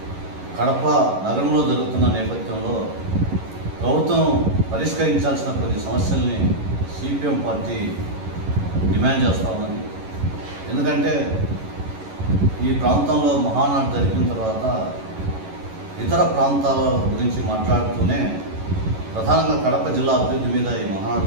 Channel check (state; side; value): late; left; 11 ms